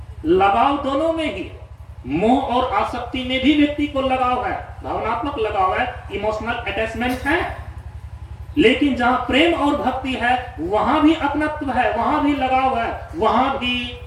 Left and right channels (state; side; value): identical; both; correlation 1.00